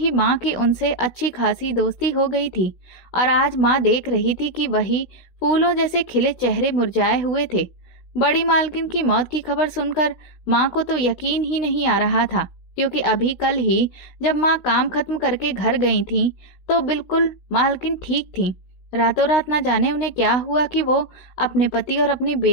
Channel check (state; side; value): late; right; 16 ms